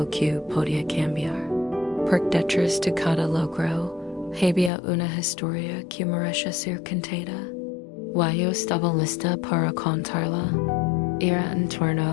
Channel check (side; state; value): right; drops out; at 4.7 s